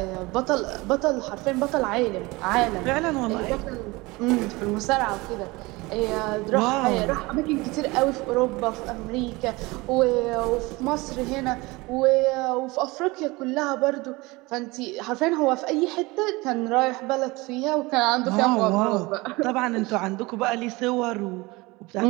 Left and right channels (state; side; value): quieter; left; 23.0 dB